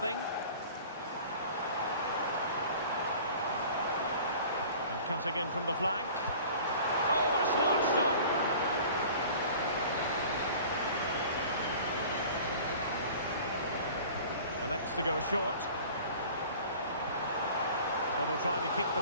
And cutting in from the flank. Oh, a smart stop. Elects to go short. Well, they'll try to keep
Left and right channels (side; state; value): both; inverted; correlation -0.44